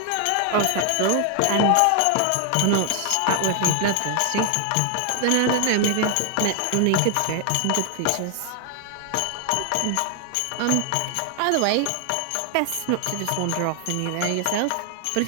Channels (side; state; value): both; different; correlation 0.00